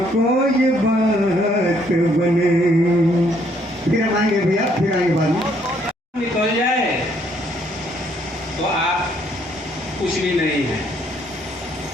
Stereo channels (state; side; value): normal; both; correlation 0.67